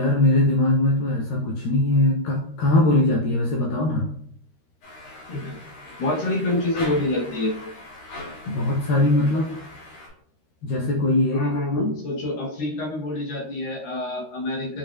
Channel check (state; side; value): late; right; 13 ms